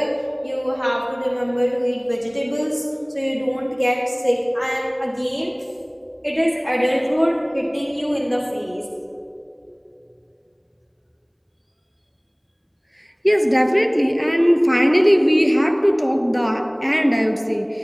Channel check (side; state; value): both; identical; correlation 1.00